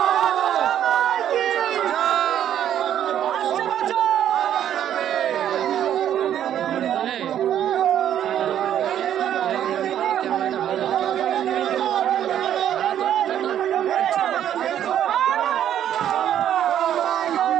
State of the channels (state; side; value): quieter; left; 10.4 dB